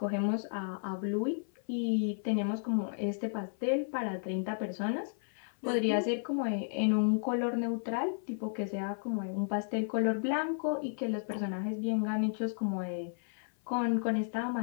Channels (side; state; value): right; silent; 56 dB below the other